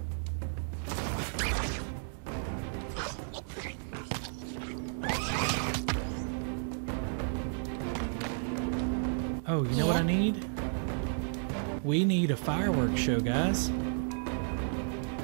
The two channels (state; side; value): silent; left; 56 dB below the other